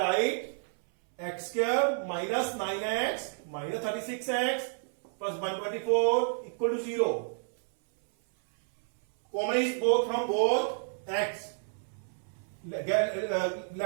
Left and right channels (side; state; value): left; silent; 58 dB below the other